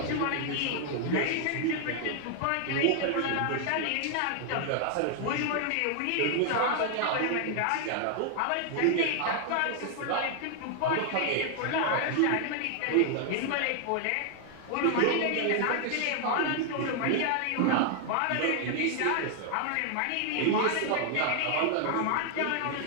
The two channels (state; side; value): different; both; correlation 0.00